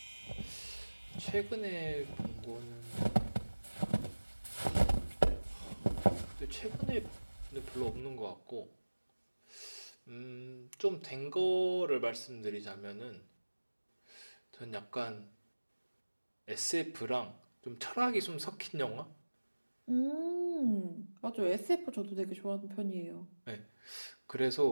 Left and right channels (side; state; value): both; inverted; correlation -1.00